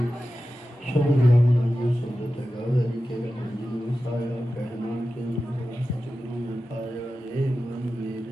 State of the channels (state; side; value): normal; both; correlation 0.93